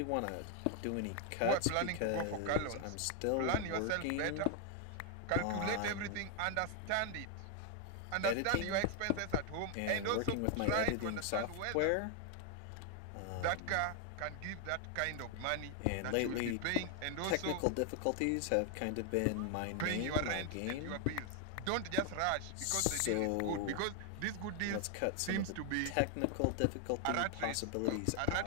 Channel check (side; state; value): both; different; correlation 0.00